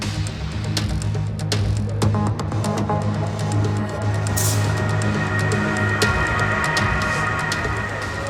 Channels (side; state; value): both; identical; correlation 1.00